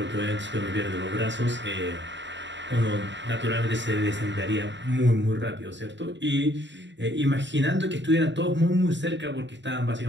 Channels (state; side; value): late; left; 0.53 ms